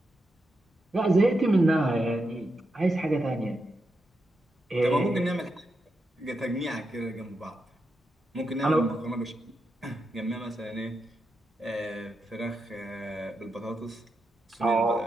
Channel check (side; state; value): both; normal; correlation 0.85